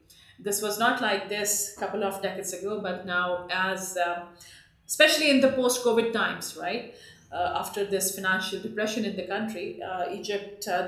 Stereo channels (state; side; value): identical; both; correlation 1.00